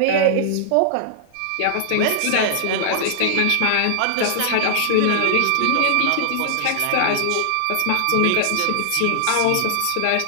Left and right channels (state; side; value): different; both; correlation -0.01